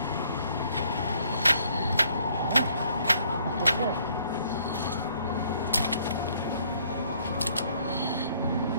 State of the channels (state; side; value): inverted; both; correlation -0.64